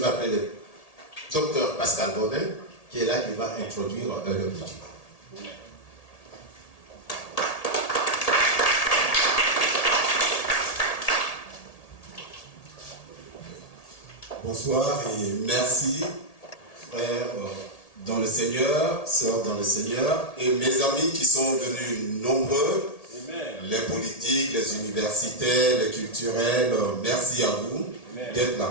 appeler le docteur Pascal Bonnet, qui est là, qui va introduire le meeting. Bonsoir et merci, frères dans le Seigneur, sœurs dans le Seigneur, et mes amis qui sont venus nombreux, Amen. Les politiques, les universitaires, les culturels, merci à vous d'être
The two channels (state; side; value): late; right; 1.8 ms